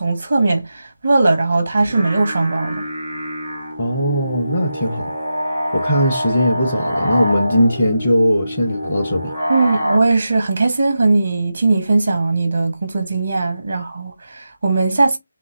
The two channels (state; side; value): inverted; both; correlation -0.89